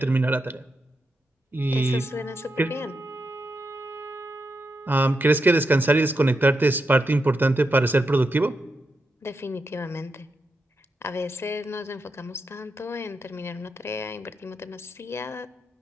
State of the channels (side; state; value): both; normal; correlation 0.85